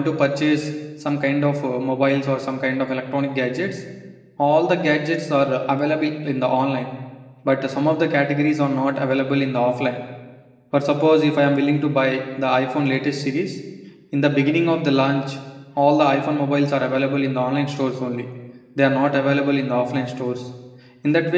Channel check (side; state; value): both; identical; correlation 1.00